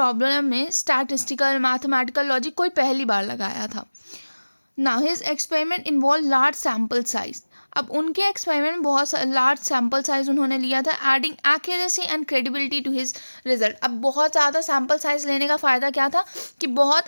में स्टैटिस्टिकल मैथमेटिकल लॉजिक कोई पहली बार लगाया था. Now his experiment involved large sample size. अब उनके एक्सपेरिमेंट में बहुत लार्ज सैम्पल साइज उन्होंने लिया था adding accuracy and credibility to his result. अब बहुत ज़्यादा सैम्पल साइज लेने का फ़ायदा क्या था कि बहुत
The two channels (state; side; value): inverted; both; correlation -1.00